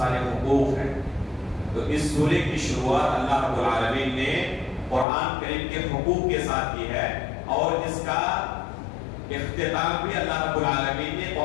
حقوق ہیں، تو اس سورے کی شروعات اللہ رب العالمین نے قرآن کریم کے حقوق کے ساتھ کی ہے، اور اس کا اختتام بھی اللہ رب العالمین نے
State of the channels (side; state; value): right; drops out; at 5.1 s